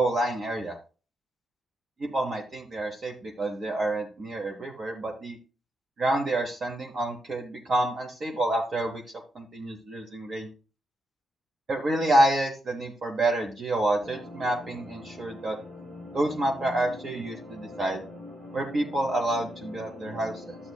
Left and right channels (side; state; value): both; normal; correlation 0.83